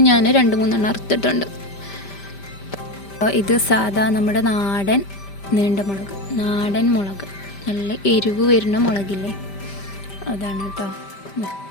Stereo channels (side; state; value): right; late; 5.1 ms